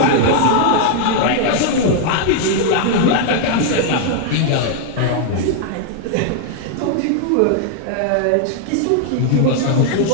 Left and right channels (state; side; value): different; both; correlation 0.00